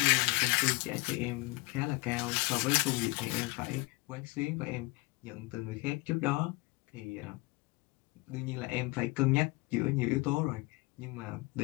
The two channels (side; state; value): right; quieter; 24.8 dB